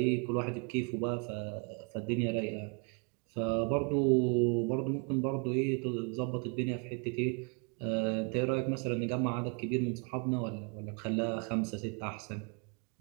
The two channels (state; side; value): quieter; left; 36.2 dB